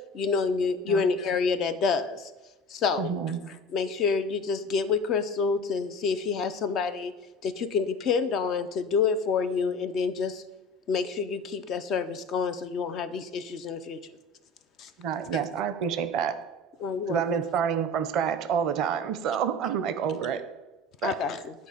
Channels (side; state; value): both; normal; correlation 0.37